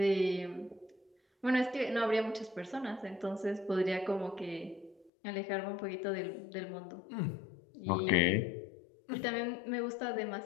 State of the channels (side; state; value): right; drops out; at 5.1 s